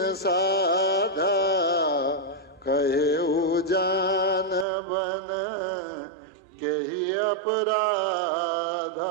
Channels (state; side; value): drops out; left; at 4.7 s